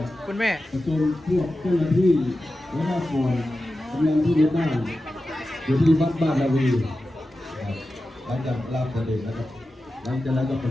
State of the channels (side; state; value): both; normal; correlation 0.93